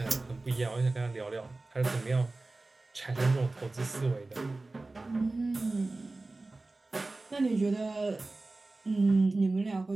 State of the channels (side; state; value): left; quieter; 3.2 dB